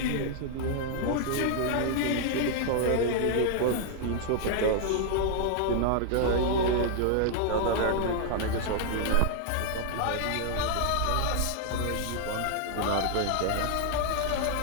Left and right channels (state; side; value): different; both; correlation 0.00